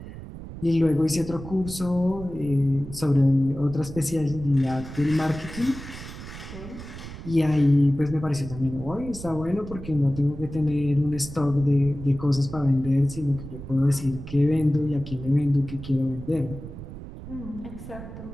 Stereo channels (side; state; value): right; noise; rumble, 12 dB below the sound